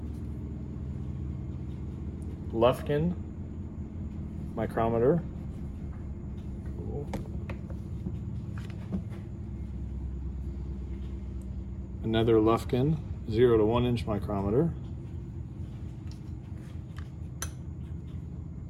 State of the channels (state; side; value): identical; both; correlation 1.00